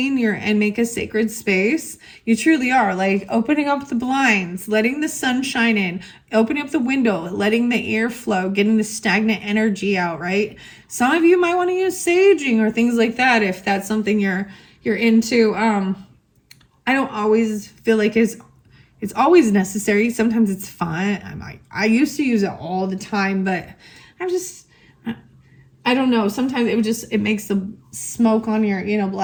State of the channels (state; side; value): identical; both; correlation 1.00